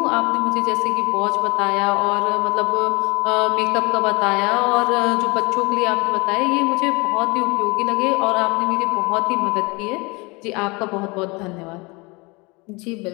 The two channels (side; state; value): right; quieter; 26.6 dB